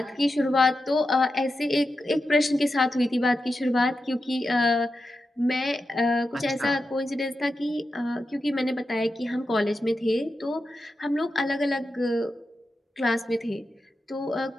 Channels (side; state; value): both; normal; correlation 0.90